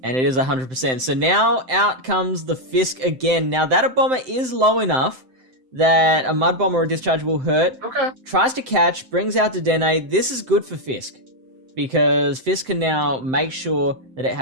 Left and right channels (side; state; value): left; late; 7.8 ms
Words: And it is 100%. So now out comes the Fisk again. Now that a bomber is low enough that a Mud Bomb or a Discharge will hurt. Okay. Tries to catch, brings out Dedenne. This is good for Fisk, because Fisk can now make sure that it